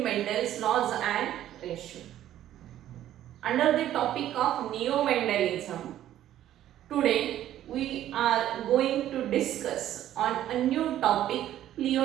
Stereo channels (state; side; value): quieter; left; 12.3 dB